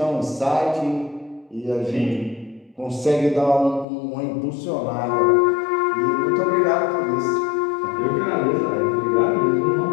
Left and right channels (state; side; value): drops out; right; at 3.9 s